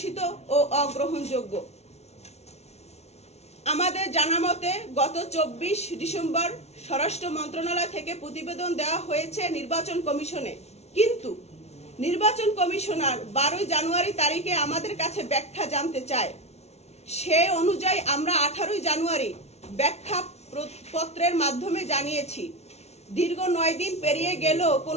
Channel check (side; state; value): right; late; 0.31 ms